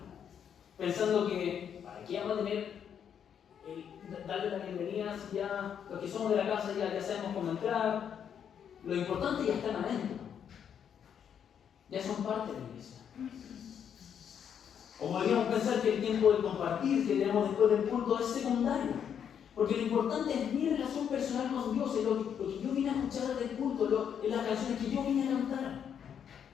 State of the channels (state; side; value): quieter; right; 8.3 dB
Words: pensando que ¿para qué vamos a tener darle la bienvenida si ya los que somos de la casa ya sabemos cómo entrar? Lo importante ya están adentro, ya son parte de la iglesia. O podríamos pensar que el tiempo de compartir que tenemos después del culto es secundario, porque lo importante es mi relación personal con Dios, es lo que yo vine a escuchar del culto, en las canciones que yo vine a cantar,